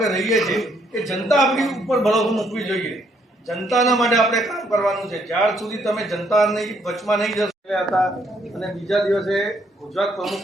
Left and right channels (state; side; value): normal; both; correlation 0.70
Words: રહીએ છીએ, એ જનતા આપણી ઉપર ભરોસો મૂકવી જોઈએ. જનતાના માટે આપણે કામ કરવાનું છે. જ્યાર સુધી તમે જનતાની વચમાં નહીં જશો હતા અને બીજા દિવસે ગુજરાત